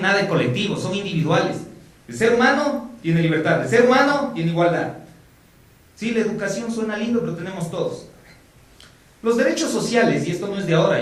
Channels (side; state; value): both; identical; correlation 1.00